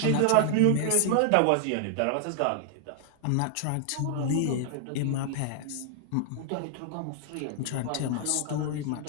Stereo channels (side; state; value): both; different; correlation 0.00